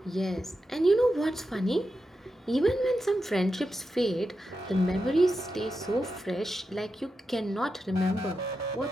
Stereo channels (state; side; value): normal; both; correlation 0.89